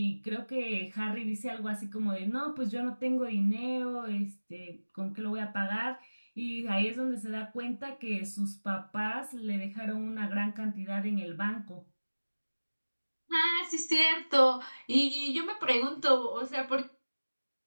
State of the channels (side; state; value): both; inverted; correlation -1.00